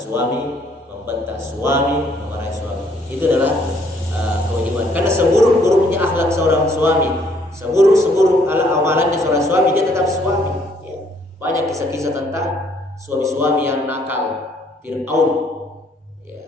membentak suami, memarahi suami. Itu adalah kewajiban. Karena seburuk-buruknya akhlak seorang suami, seburuk-seburuk amalannya seorang suami, dia tetap suami. Ya. Banyak kisah-kisah tentang suami-suami yang nakal, Fir'aun. Ya,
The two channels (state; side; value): normal; both; correlation 0.65